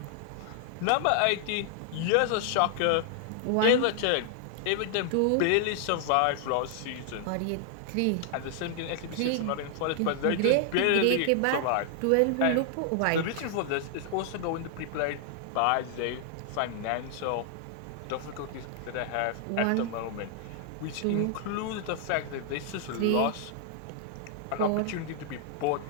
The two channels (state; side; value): different; both; correlation 0.00